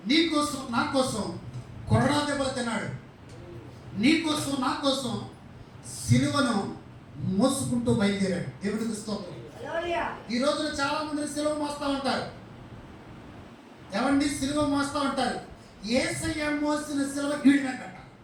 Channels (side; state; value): both; identical; correlation 1.00